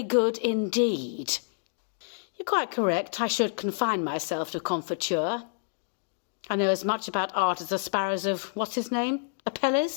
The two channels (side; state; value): right; silent; digital silence